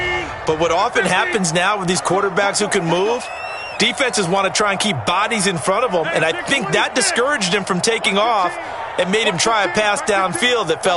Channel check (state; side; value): identical; both; correlation 1.00